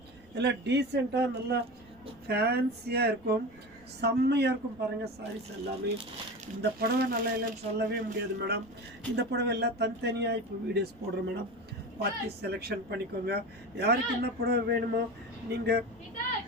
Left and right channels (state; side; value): noise; right; rumble, 26 dB below the sound